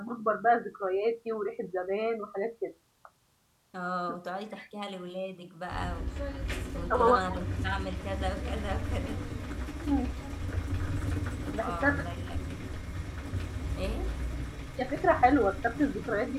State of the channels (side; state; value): both; identical; correlation 1.00